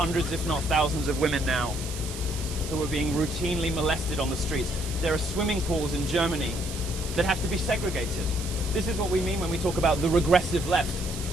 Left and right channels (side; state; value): right; noise; hiss, 10 dB below the sound